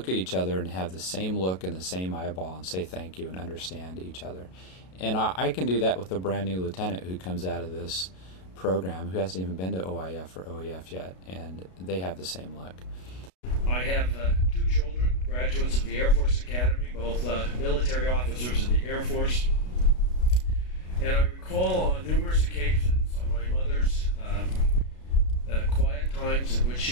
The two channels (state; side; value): late; right; 33 ms